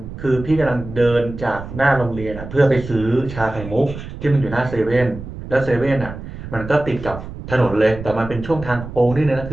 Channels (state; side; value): noise; right; rumble, 11 dB below the sound